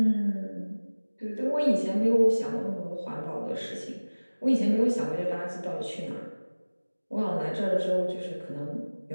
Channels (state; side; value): inverted; both; correlation -1.00